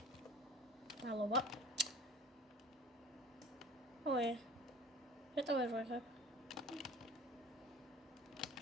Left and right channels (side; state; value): both; normal; correlation 0.43